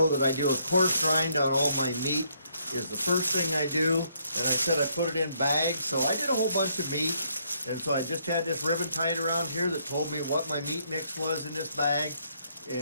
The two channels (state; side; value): inverted; both; correlation -0.71